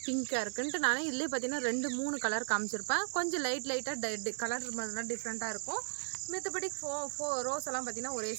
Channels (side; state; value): left; silent; digital silence